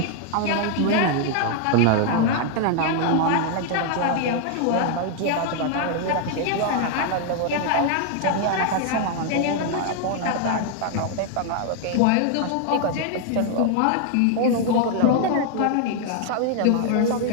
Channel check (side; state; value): both; different; correlation 0.00